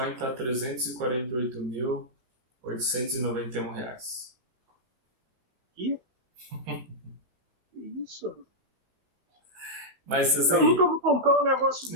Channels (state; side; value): late; left; 16 ms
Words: está R$ 348.891 reais. Que? Isso? Mas assim, eu nunca vou comprar um negócio